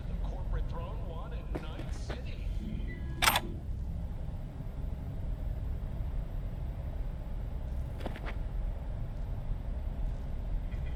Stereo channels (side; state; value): both; identical; correlation 1.00